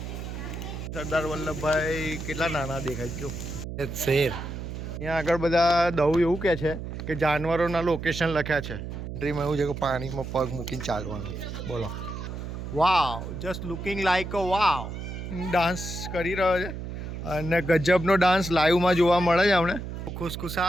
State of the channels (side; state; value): right; noise; hum, 7 dB below the sound